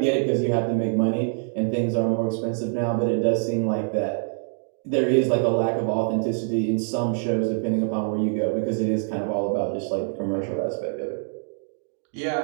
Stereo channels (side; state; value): left; silent; digital silence